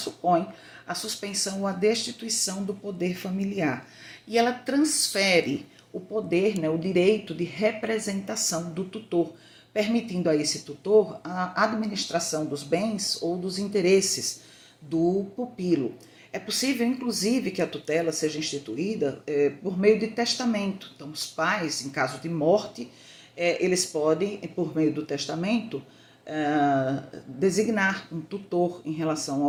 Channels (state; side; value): identical; both; correlation 1.00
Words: a suspensão ou a destituição do poder familiar. E ela transfere o poder, né, o direito de representação do tutor, permitindo a esse tutor a administração dos bens ou dos interesses do pupilo. É possível, inclusive, que a tutela seja instituída por meio de testamento. Então, os pais, em caso de morte, eles podem, por meio do testamento, designar um tutor em relação